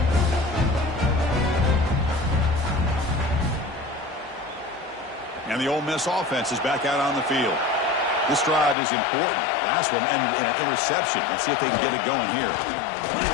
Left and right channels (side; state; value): right; drops out; at 8.8 s